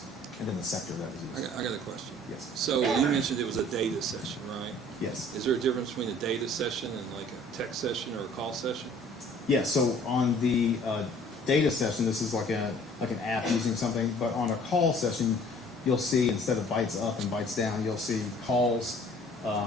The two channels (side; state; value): both; normal; correlation 0.53